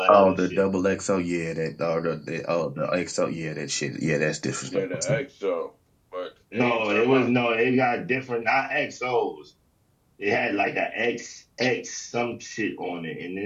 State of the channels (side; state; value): both; identical; correlation 1.00